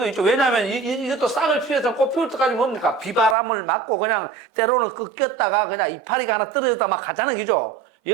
있죠. 왜냐하면 이것도 싹을 틔워서 꽃 피울 때까지 뭡니까? 비바람을 맞고 그냥 때로는 꺾였다가 그냥 이파리가 하나 떨어졌다 막 가자는 거죠.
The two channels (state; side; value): drops out; left; at 3.4 s